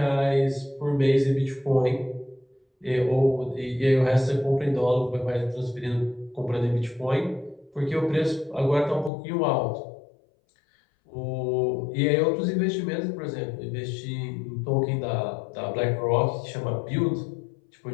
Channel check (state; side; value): drops out; right; at 9.1 s